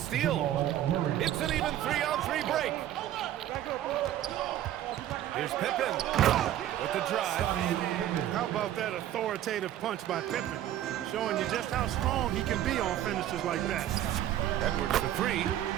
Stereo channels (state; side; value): quieter; left; 12.3 dB